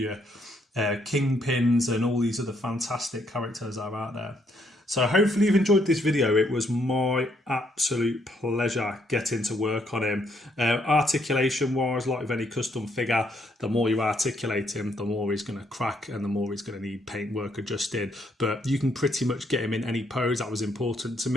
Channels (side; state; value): both; normal; correlation 0.72